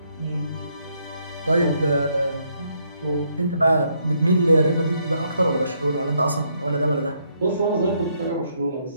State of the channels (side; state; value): both; inverted; correlation -0.73